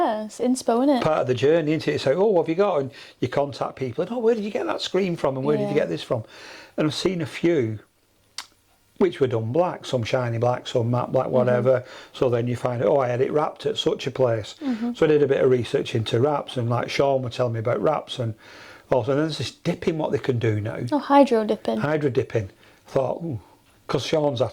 isn't it? Part of the journey, isn't it? It's like, oh, what have you got? And you contact people, and oh, where did you get that screen from, and where did you get this from? And I've seen a few which were done black, some shiny black, some matte black, whatever. So then you find, oh, I had it wrapped at such a place. So I did a bit of research into wraps, and like Sean would tell me about wraps, and also there's this dipping what they can do now. Oh, hydro dipping. Hydro dipping. I thought, ooh, because Sean's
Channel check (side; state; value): both; identical; correlation 1.00